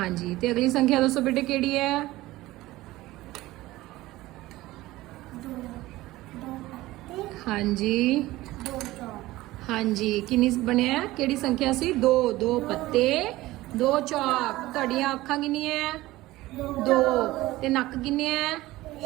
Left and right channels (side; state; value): left; quieter; 17.7 dB